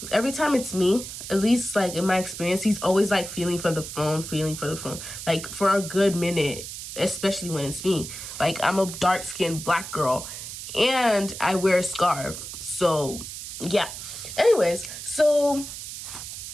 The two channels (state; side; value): noise; right; hiss, 9 dB below the sound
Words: every time it's me, at least like in my experience, he's always like feeling for the phone, like for a good minute, especially when it's me. Like, I'm a dark-skinned black girl and I wear a scarf. So yeah. Anyways, so